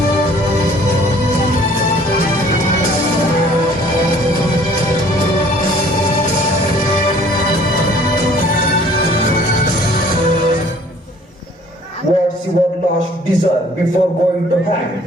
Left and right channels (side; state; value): both; normal; correlation 0.55